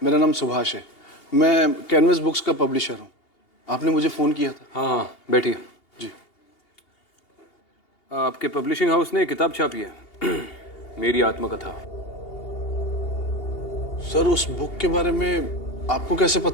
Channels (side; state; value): right; late; 2.8 ms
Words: मेरा नाम सुभाष है। मैं कैनवस बुक्स का पब्लिशर हूँ। आपने मुझे फ़ोन किया था। हाँ हाँ, बैठिए। जी। आपके पब्लिशिंग हाउस ने किताब छापी है, मेरी आत्मकथा। सर, उस बुक के बारे में आपको कैसे